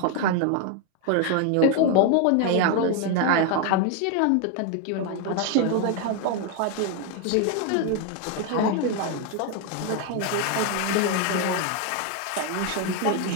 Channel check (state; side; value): different; both; correlation 0.01